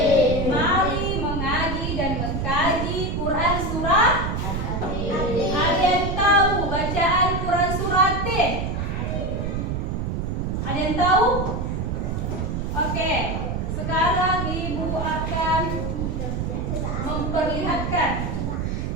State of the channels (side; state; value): right; noise; rumble, 2 dB below the sound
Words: Mari mengaji dan mengkaji Quran surat. Ada yang tahu bacaan Quran surat At-Tin? Ada yang tahu? Oke, sekarang Ibu akan memperlihatkan.